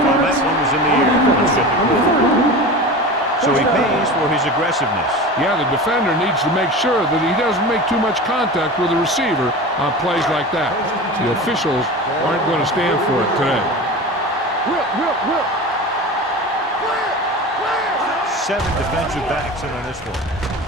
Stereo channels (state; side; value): normal; both; correlation 0.31